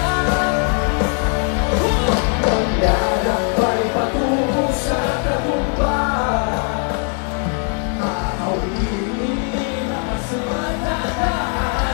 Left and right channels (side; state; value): right; quieter; 39.4 dB